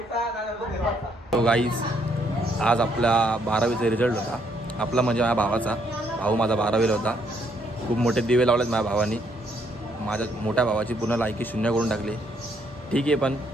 तो गाईज आज आपला 12वीचा रिझल्ट होता. आपला म्हणजे माझ्या भावाचा. भाऊ माझा 12वीला होता. खूप मोठे दिवे लावलेत माझ्या भावानी. माझ्या मोठ्या भावाची पूर्ण लायकी 0 करून टाकली. ठीक आहे पण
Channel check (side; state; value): both; normal; correlation 0.71